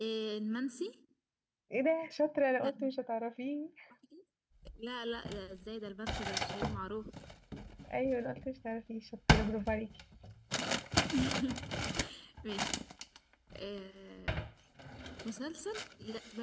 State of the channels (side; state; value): both; identical; correlation 1.00